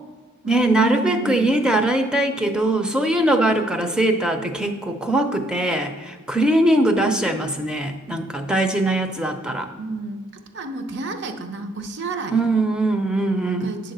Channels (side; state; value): both; normal; correlation 0.69